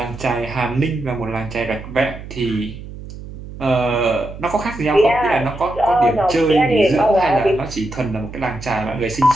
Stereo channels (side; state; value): right; noise; hum, 13 dB below the sound